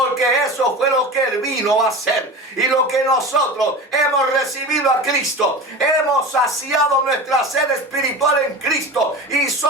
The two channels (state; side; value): normal; both; correlation 0.30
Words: eso fue lo que Él vino a hacer. Y lo que nosotros hemos recibido a Cristo, hemos saciado nuestra sed espiritual en Cristo y